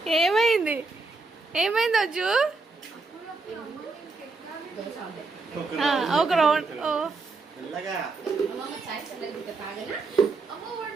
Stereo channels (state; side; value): quieter; left; 3.8 dB